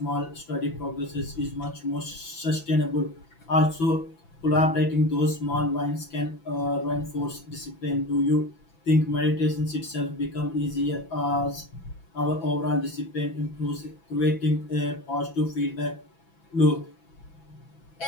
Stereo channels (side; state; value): right; late; 6.0 ms